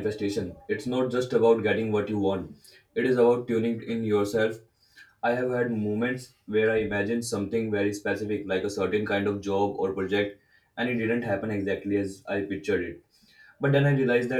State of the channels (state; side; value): identical; both; correlation 1.00